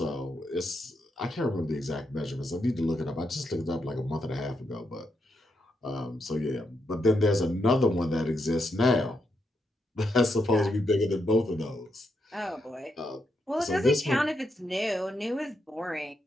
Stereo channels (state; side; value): normal; both; correlation 0.82